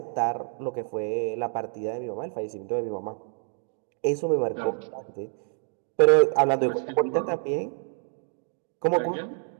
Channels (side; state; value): left; silent; 58 dB below the other